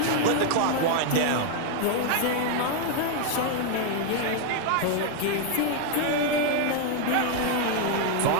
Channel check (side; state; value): both; different; correlation 0.00